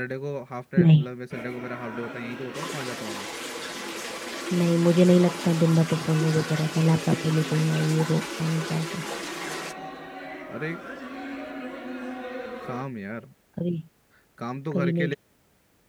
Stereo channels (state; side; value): identical; both; correlation 1.00